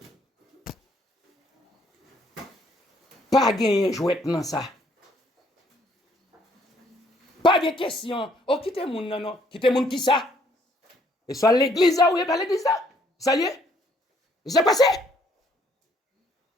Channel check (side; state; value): both; normal; correlation 0.66